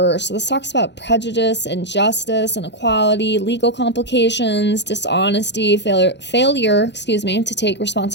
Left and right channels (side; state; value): right; late; 0.51 ms